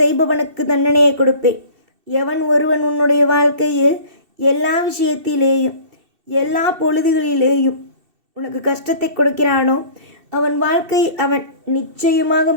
தண்டனையை கொடுப்பேன். எவன் ஒருவன் உன்னுடைய வாழ்க்கையில் எல்லா விஷயத்திலேயும் எல்லா பொழுதுகளிலேயும் உனக்கு கஷ்டத்தை கொடுக்கிறானோ அவன் வாழ்க்கை அவன் நிச்சயமாக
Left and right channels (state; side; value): late; left; 2.7 ms